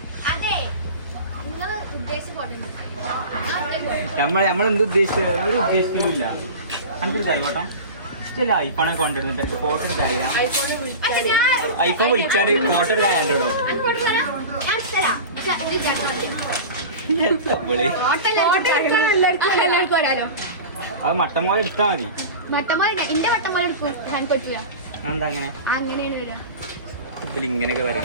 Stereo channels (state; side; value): inverted; both; correlation -0.31